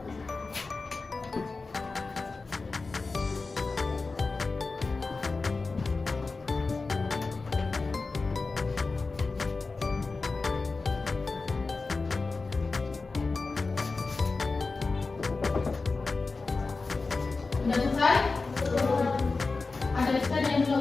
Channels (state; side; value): quieter; right; 3.9 dB